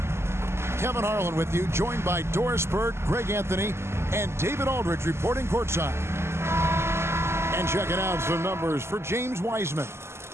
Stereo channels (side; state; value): left; late; 0.12 ms